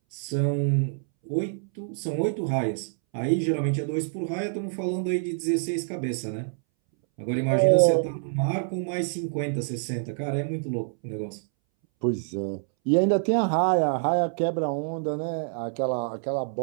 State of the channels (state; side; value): silent; left; 61 dB below the other